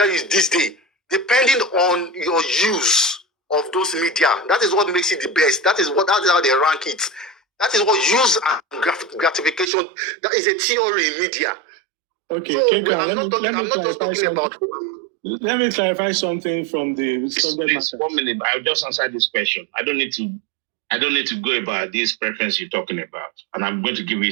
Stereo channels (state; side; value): drops out; left; at 9.7 s